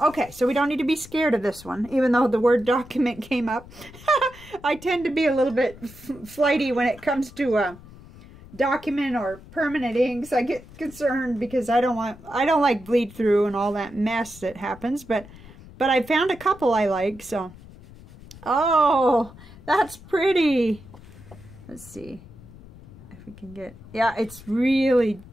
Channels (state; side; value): noise; left; rumble, 20 dB below the sound